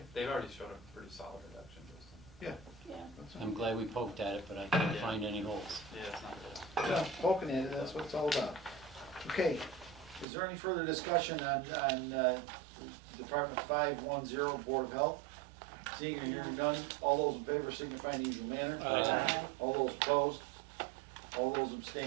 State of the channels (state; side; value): drops out; left; at 10.2 s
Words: They've already showed a pretty solid reduction, Justin. Yeah. Yeah. that's I'm all. glad we poked at it, but I couldn't find any holes. Yeah, it's not bad. Yeah, poking at it, that's what it's all about. Okay, is there any further discussion on Department 510, Board of Health? Seeing or hearing none, all those in favor signify in the usual manner. Aye. All those opposed? All those